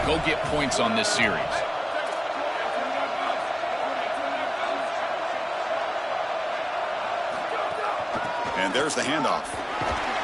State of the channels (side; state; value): both; identical; correlation 1.00